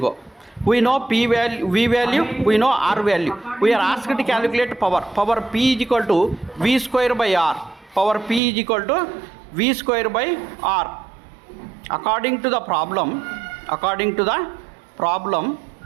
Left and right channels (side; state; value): left; drops out; at 8.4 s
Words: We know P value, V value, we know R value. We are asked to calculate power. Power P is equal to V square by R. According to the problem,